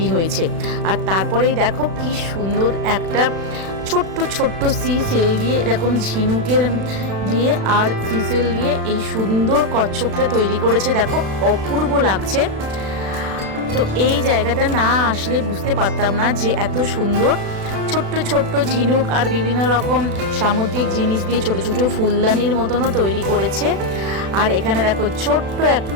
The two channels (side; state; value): left; late; 36 ms